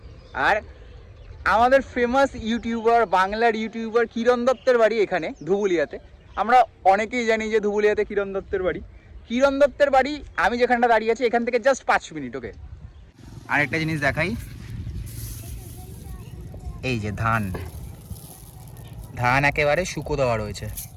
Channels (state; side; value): identical; both; correlation 1.00